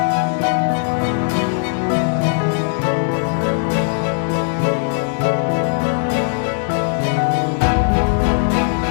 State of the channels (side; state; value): right; silent; 56 dB below the other